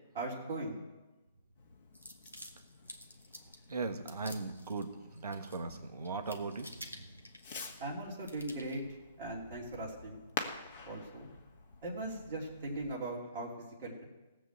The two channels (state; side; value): inverted; both; correlation -0.53